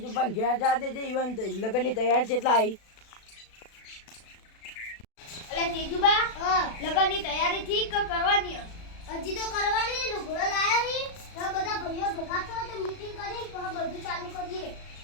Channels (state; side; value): late; right; 36 ms